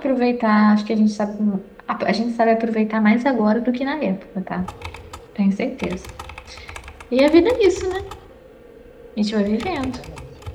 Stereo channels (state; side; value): identical; both; correlation 1.00